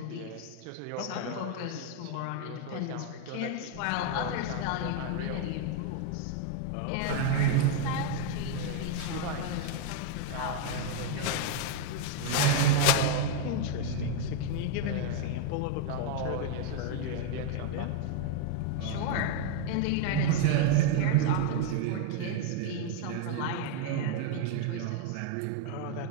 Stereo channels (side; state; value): both; different; correlation 0.00